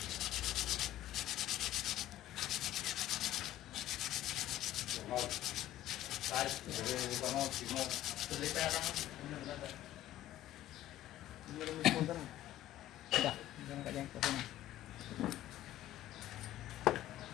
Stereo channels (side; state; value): right; quieter; 13.6 dB